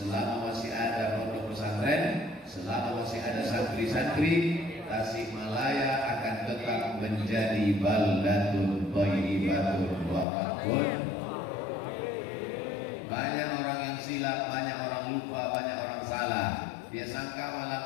masih ada pondok pesantren, selama masih ada santri-santri, Tasikmalaya akan tetap menjadi baldatun thayyibatun barakatun. Banyak orang yang silap, banyak orang lupa, banyak orang salah. Dia sangka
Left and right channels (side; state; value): right; drops out; at 10.2 s